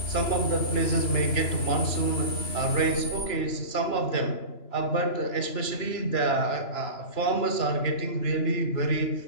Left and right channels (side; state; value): right; late; 2.9 ms